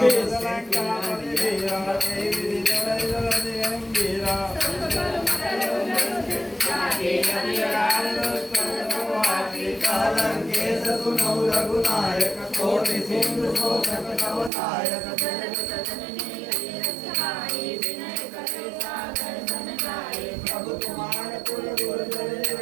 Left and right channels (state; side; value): drops out; left; at 14.5 s